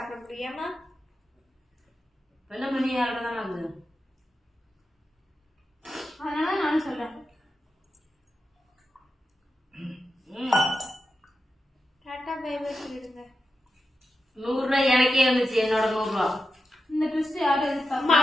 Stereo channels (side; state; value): both; normal; correlation 0.90